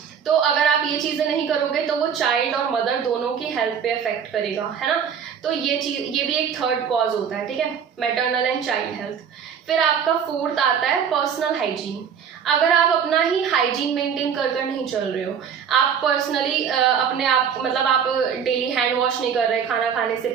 तो अगर आप ये चीज़ें नहीं करोगे तो वो चाइल्ड और मदर दोनों की हेल्थ पे अफेक्ट करेगा, है ना। तो ये भी एक थर्ड कॉज होता है, ठीक है, मैटरनल एंड चाइल्ड हेल्थ। फिर आपका फोर्थ आता है पर्सनल हाइजीन। अगर आप अपना ही हाइजीन मेंटेन कर नहीं चल रहे हो, आप पर्सनली अपने आप मतलब आप डेली हैंड वॉश नहीं कर रहे खाना खाने से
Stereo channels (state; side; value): quieter; left; 7.5 dB